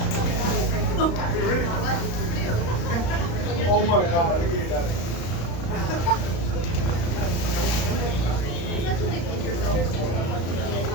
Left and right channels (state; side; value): late; right; 35 ms